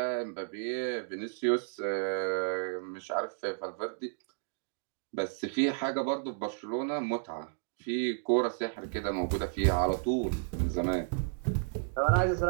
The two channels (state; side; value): silent; left; digital silence